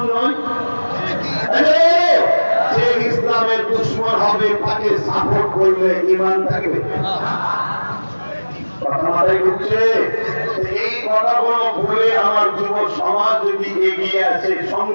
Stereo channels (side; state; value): both; inverted; correlation -1.00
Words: নয়? যে ইসলামের দুশমন হবে তাকে সাপোর্ট করলে ঈমান থাকবে? কথা মাথায় ঢুকছে? এই কথাগুলো ভুলে আমার যুব সমাজ যদি এগিয়ে আসে,